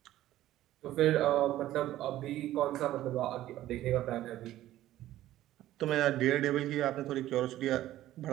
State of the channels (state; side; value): quieter; left; 14.2 dB